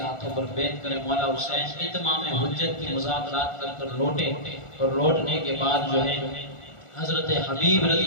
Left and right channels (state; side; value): late; right; 1.4 ms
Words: ہاتھوں پر بیعت کرے۔ مولا حسین اتمام حجت کی مذاکرات کر کر لوٹے، اور لوٹنے کے بعد جو ہے حضرت حبیب